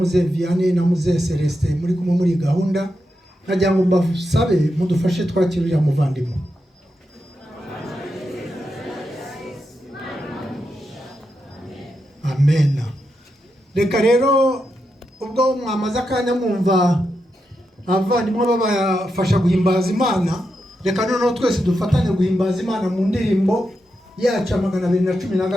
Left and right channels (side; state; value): both; normal; correlation 0.86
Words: Vianney na Muze Celestin muri kumwe muri gahunda. Nagira ngo mbasabe mudufashe twakirira muvandimwe. Amen. Reka rero ubwo mwamaze akanya mwumva abavandimwe babafasha guhimbaza Imana, reka noneho twese dufatanye guhimbaza Imana mu ndirimbo yacu